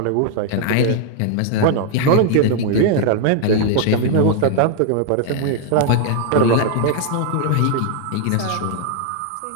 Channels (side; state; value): both; different; correlation 0.00